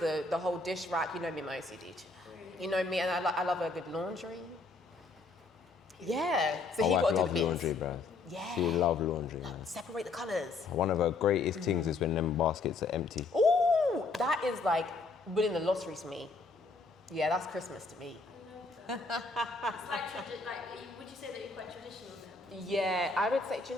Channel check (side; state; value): right; quieter; 3.7 dB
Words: whole dish rack. You know me, my OCD. You know me, and I love a good laundry. Yeah. So he got to do the bits. Laundry, bro. Yeah. She love laundry, man. Separate the colours. One of her greatest things is when them baskets are empty. Ooh, that is like winning the lottery to me. Yeah, that's Christmas to me. It's would you say that you're quite traditional then? Yeah, I would say, do